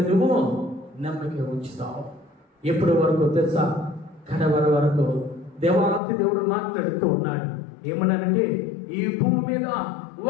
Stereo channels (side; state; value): right; drops out; at 6.0 s